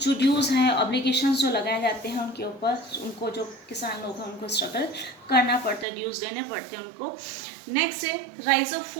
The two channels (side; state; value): left; drops out; at 5.9 s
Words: जो ड्यूज़ हैं, ऑब्लिगेशंस जो लगाए जाते हैं उनके ऊपर, उनको जो किसान लोग हैं उनको स्ट्रगल करना पड़ता है, ड्यूज़ देने पड़ते हैं उनको। नेक्स्ट है राइज ऑफ